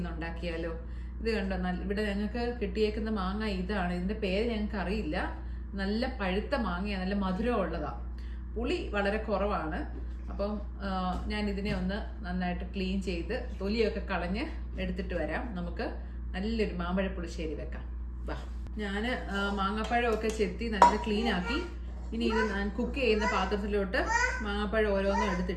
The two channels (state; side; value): identical; both; correlation 1.00